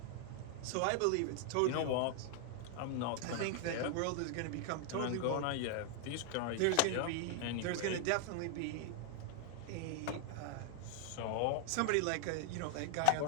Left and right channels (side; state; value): both; different; correlation 0.00